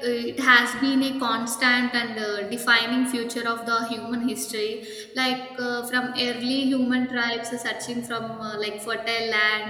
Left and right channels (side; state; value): both; identical; correlation 1.00